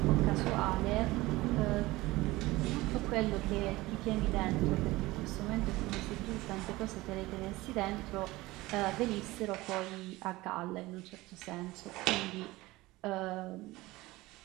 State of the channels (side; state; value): left; quieter; 19.7 dB